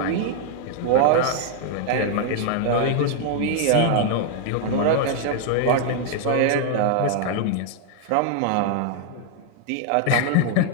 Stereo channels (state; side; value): different; both; correlation 0.00